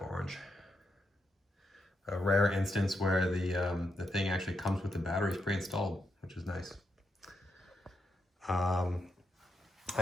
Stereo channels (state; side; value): normal; both; correlation 0.83